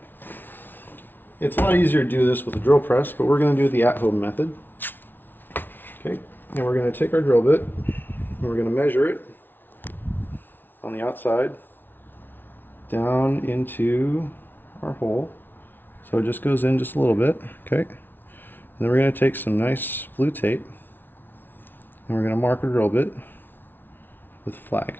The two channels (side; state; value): right; late; 0.096 ms